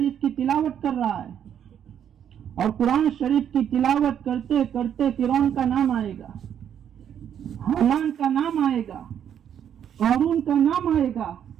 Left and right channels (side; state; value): left; quieter; 9.1 dB